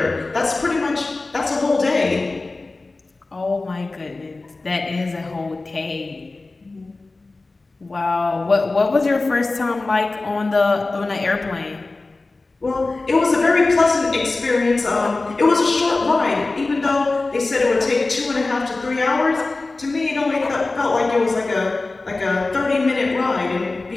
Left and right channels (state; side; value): quieter; right; 3.4 dB